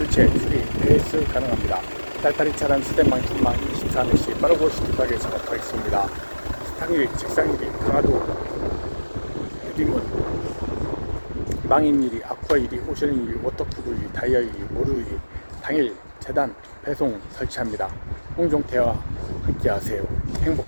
수리 AS 가능합니다. 딸딸이 차량 수대망 중망 24시 빠르고 시급하게 작업하겠습니다. 당일 책상일이 강화도 유딩원 망인일이 아쿠아일이 오션일이 워터푸드일이 다이어일이 모루일이 당일 재단 배송 설치합니다. 홍종태와 함께 하세요.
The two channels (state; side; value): inverted; both; correlation -1.00